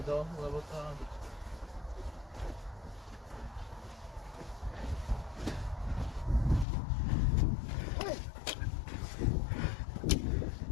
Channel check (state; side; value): drops out; right; at 6.7 s